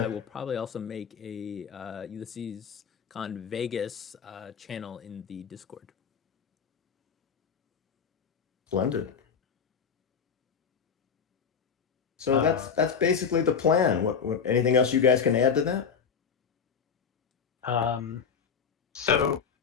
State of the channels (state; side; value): quieter; right; 6.5 dB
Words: will probably also make a Ulysses Con Vegas channel in the Discord. Splendid. So that's basically the plan. What anything else you guys can add to that? So,